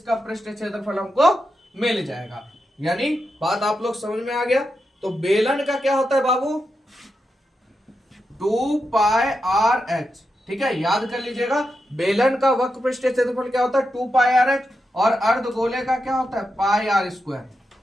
पृष्ठीय क्षेत्रफल हमको मिल जाएगा। यानी बात आप लोग समझ में आ गया। तो बेलन का क्या होता है बाबू, 2πrh, ठीक है, याद कर लीजिएगा। बेलन का वक्र पृष्ठीय क्षेत्रफल क्या होता है, 2πrh, और अर्धगोले का क्या होता है, πr²।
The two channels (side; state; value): both; normal; correlation 0.87